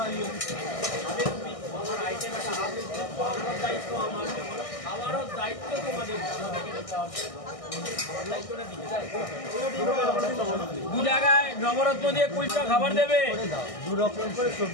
আইটেম একটা হাফ প্লেট দায়িত্ব আমার। আমারও দায়িত্ব তোমাদের। দু জায়গায় নবরত্ন দিয়ে কুলচা খাবার দেবে। দু রকম করে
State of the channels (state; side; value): late; right; 1.6 ms